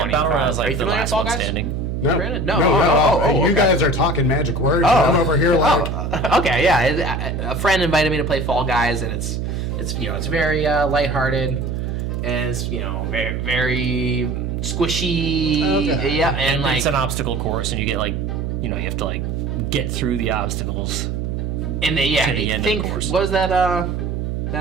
Battle Royale is Are like you the familiar with last Fall one Guys? standing. No, Brandon? no, No. no. Oh, You okay. guys are talking magic words. and I'm over here like, Okay, yeah. A friend invited me to play Fall Guys, and it's very lighthearted, and it's very very squishy. Okay. Yeah, and like it's an obstacle course, and you get like you have to like get through the obstacles. and they to the end of the course. What was that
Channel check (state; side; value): noise; right; hum, 2 dB below the sound